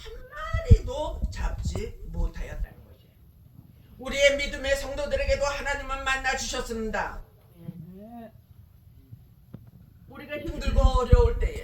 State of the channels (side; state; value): both; identical; correlation 1.00